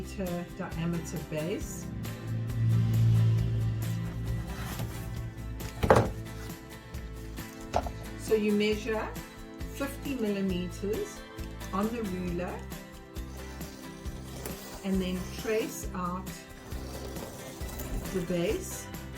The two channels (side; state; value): both; identical; correlation 1.00